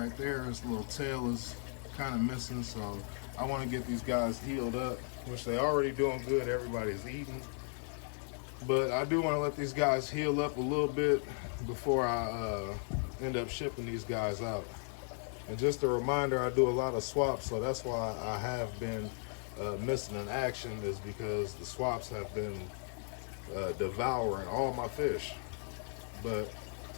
there, his little tail is kind of missing. So I want to get these guys healed up, which they already doing good. Everybody's eating. But I do want to let these guys heal up a little bit before I end up shipping these guys out. And just a reminder, I do a lot of swaps, so that's why I have been missing in action, is because the swaps have been devouring all my fish. But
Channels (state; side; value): silent; right; 54 dB below the other